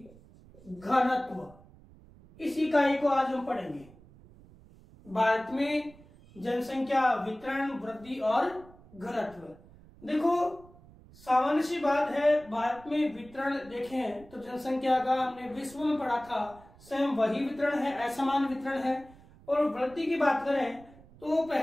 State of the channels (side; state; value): right; noise; rumble, 23 dB below the sound